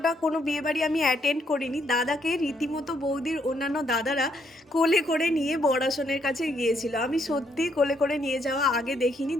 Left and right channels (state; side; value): normal; both; correlation 0.73